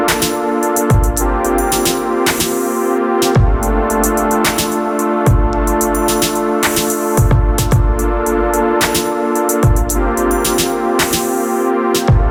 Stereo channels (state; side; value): identical; both; correlation 1.00